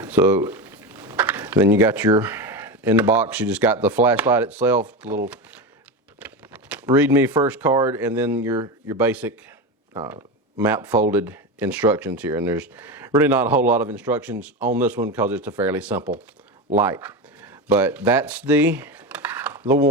so then you got in the box, you just got the flashlight itself, the little read me first card, and then your basic map folded instructions here. And there's really not a whole lot of instructions on this one because it's a fairly simple light. But that's the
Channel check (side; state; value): both; normal; correlation 0.20